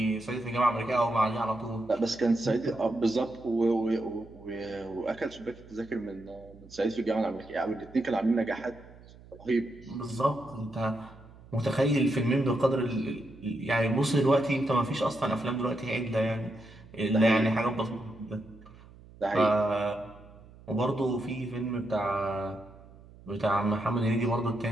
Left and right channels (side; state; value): right; noise; hum, 22 dB below the sound